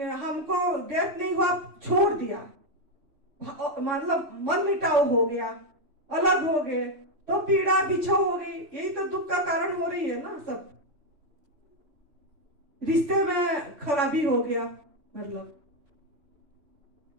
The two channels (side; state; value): left; late; 3.5 ms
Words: डेथ नहीं हुआ, छोड़ दिया, मतलब मन मिटाव हो गया, अलग हो गए, तो पीड़ा बिछो हो गई। यही तो दुख का कारण हो रही है ना। सब रिश्ते में खराबी हो गया, मतलब।